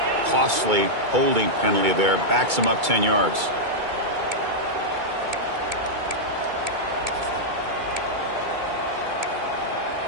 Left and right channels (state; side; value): late; left; 2.3 ms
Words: Costly holding penalty there. Backs him up 10 yards.